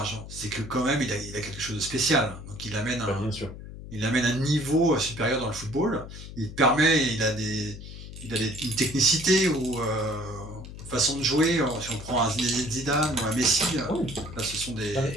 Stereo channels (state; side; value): noise; left; hum, 12 dB below the sound